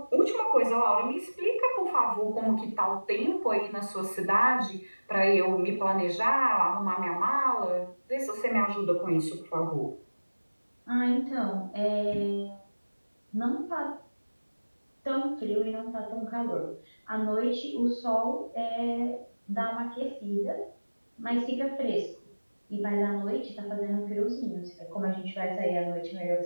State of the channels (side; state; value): both; inverted; correlation -1.00